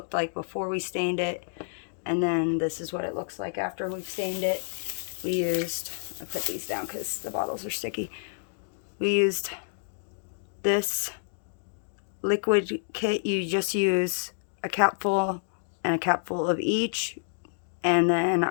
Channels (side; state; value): right; silent; digital silence